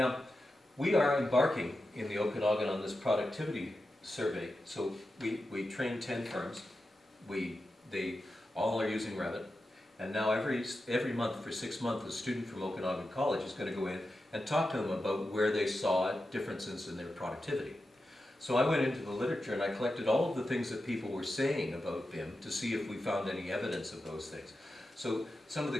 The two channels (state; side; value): normal; both; correlation 0.90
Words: we are embarking in the Okanagan on this productivity survey. So we train 10 firms. They all are using Revit. And now every month for 6 months, a student from Okanagan College is going to go in and talk to them about where they saw differences in their productivity. So I went into the literature and I collected all of the things that people were saying about BIM to see if we found any evidence of those things. So some of the